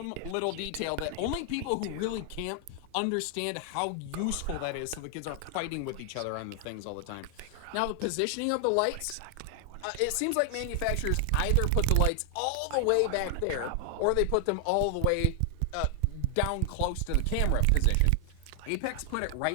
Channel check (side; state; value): both; different; correlation 0.00